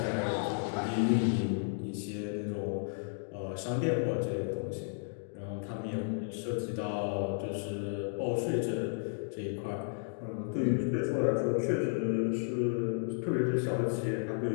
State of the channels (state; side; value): silent; right; digital silence